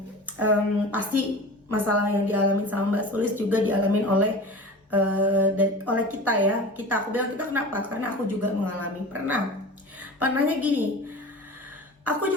pasti masalah yang dialami sama Mbak Sulis juga dialamin oleh kita ya. Aku bilang kita kenapa? Karena aku juga mengalami. Pernahnya gini, aku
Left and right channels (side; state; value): both; normal; correlation 0.35